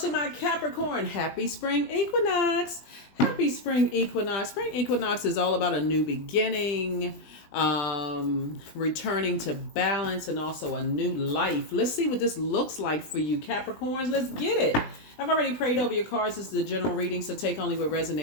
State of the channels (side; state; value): right; late; 20 ms